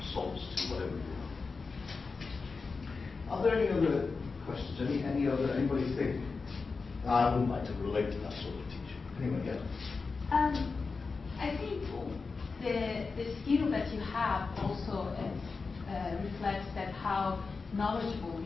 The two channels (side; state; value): right; quieter; 4.5 dB